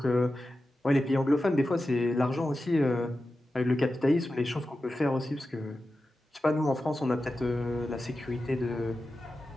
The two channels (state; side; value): normal; both; correlation 0.92